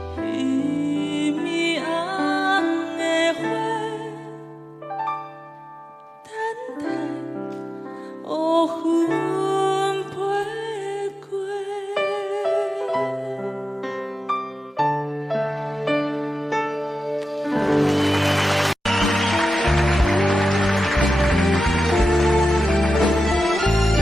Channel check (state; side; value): normal; both; correlation 0.93